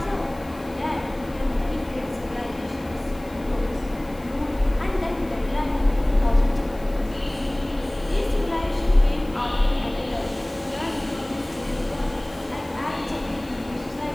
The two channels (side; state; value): left; noise; hiss, 25 dB below the sound